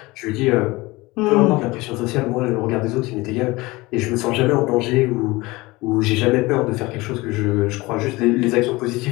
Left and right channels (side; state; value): right; quieter; 21.7 dB